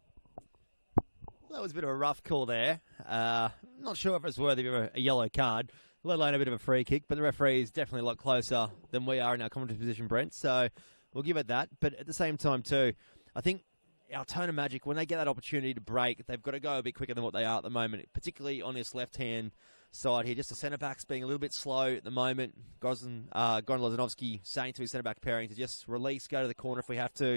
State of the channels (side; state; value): both; inverted; correlation -1.00